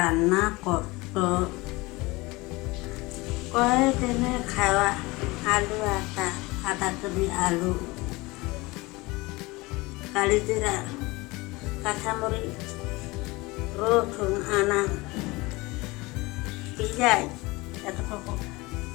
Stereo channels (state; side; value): quieter; right; 22.7 dB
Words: koto. Koi tina khawa alu ata kedi alu. Kali tira kasamuri rothun anang pijai atau koko.